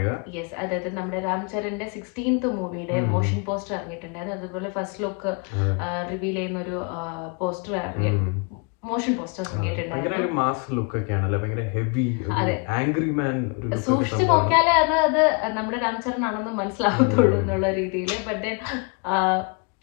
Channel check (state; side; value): quieter; right; 35.1 dB